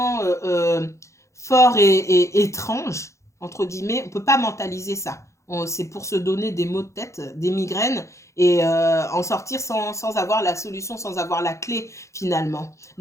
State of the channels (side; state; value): right; late; 0.14 ms